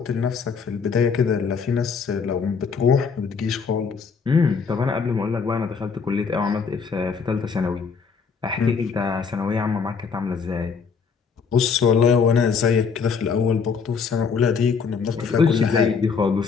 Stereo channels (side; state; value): right; quieter; 5.6 dB